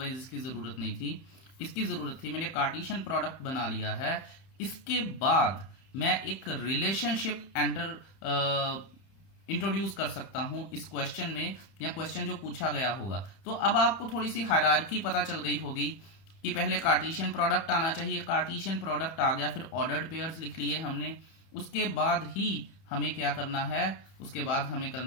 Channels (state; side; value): late; right; 31 ms